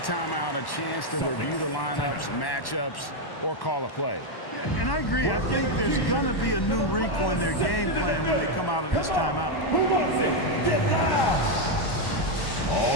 out, a chance to review the lineups, matchups, or call a play. And I agree. I think there's going to be a new wrinkle in their game plan when they come out of this timeout. Who wants it? Get loud!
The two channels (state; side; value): late; right; 1.1 ms